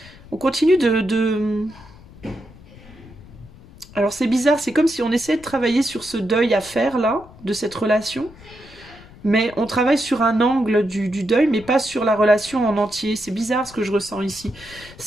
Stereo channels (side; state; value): left; noise; rumble, 21 dB below the sound